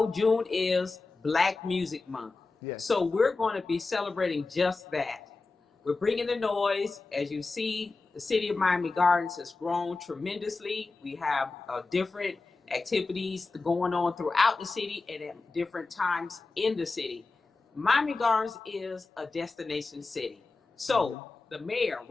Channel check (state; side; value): quieter; right; 3.8 dB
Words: June is Black Music Month. Yes. So we're going to be celebrating just that. We're bringing the noise. As you see, the city of Miami Gardens has grown tremendously. We have different activities going on throughout the city and at different times in the city. Miami Gardens is a destination city. So the mayor,